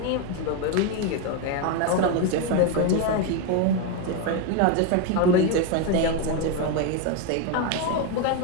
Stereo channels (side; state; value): both; different; correlation 0.02